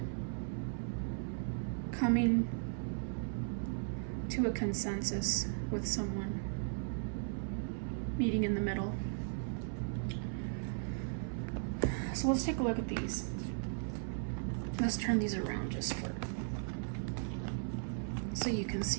coming to a consensus with someone, meeting in the middle. So let's take a look at these. Let's turn these around just for so you can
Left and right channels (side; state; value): left; silent; 53 dB below the other